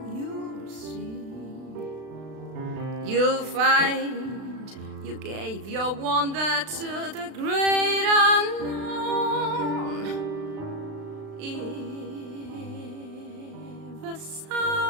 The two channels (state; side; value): late; left; 36 ms